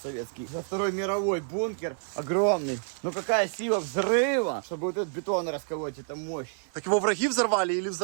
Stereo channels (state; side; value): silent; left; digital silence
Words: За Второй мировой бункер огромный. Но какая сила взрыва, чтобы вот этот бетон расколоть, это мощь. Так его враги взорвали или